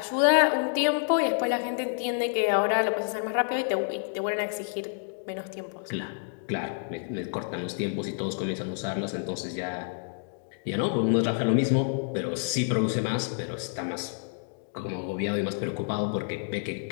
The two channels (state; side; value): silent; right; digital silence